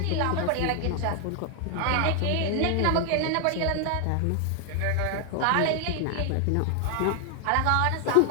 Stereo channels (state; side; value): different; both; correlation 0.00